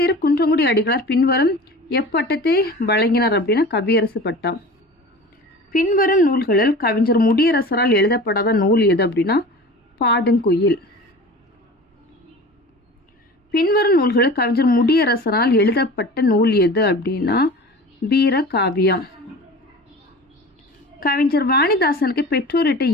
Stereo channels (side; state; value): both; normal; correlation 0.37